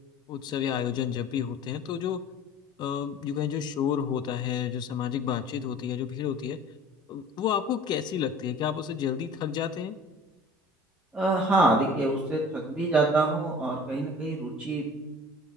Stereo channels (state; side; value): normal; both; correlation 0.45